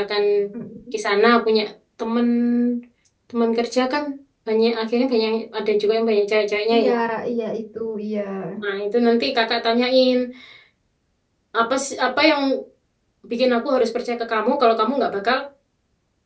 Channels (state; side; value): identical; both; correlation 1.00